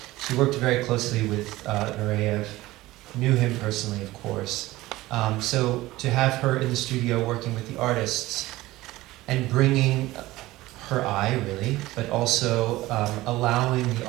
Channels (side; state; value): left; quieter; 18.0 dB